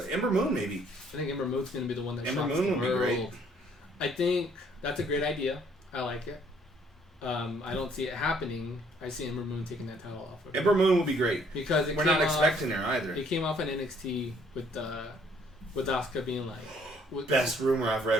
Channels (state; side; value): normal; both; correlation 0.63